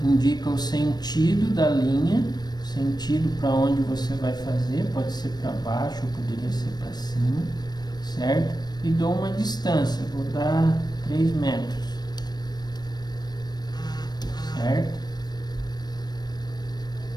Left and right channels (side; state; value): right; late; 0.20 ms